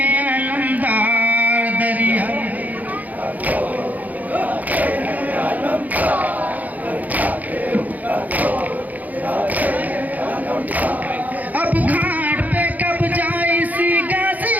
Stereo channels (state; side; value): late; left; 0.079 ms